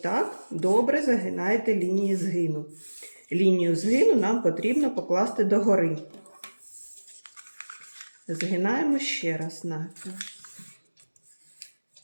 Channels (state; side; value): inverted; both; correlation -1.00